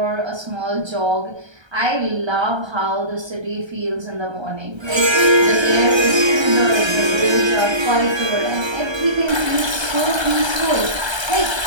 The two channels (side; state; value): left; late; 1.3 ms